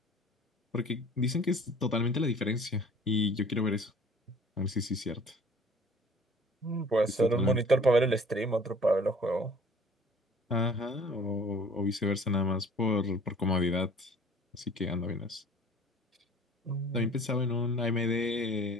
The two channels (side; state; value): both; normal; correlation 0.50